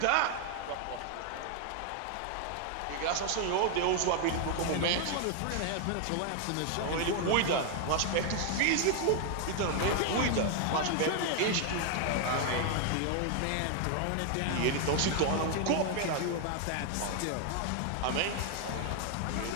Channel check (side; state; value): both; different; correlation 0.00